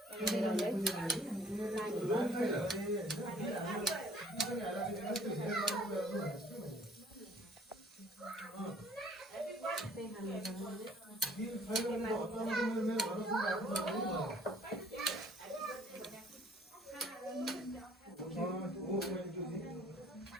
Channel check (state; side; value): normal; both; correlation 0.56